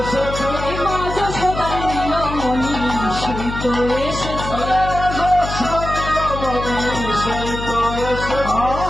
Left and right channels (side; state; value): left; noise; hum, 7 dB below the sound